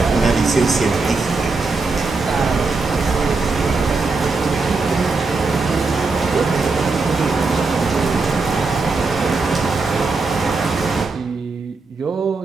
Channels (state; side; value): quieter; left; 4.0 dB